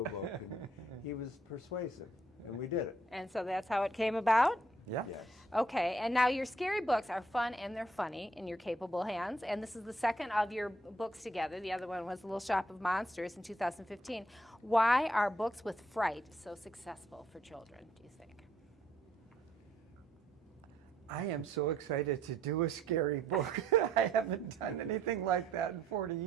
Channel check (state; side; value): normal; both; correlation 0.68